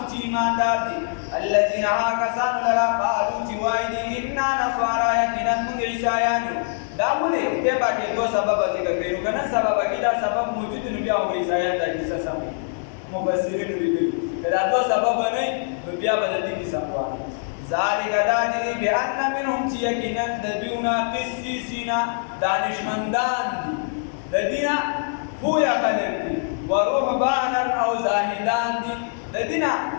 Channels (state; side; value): silent; right; 60 dB below the other